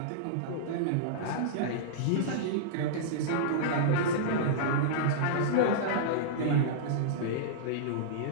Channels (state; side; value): different; both; correlation -0.03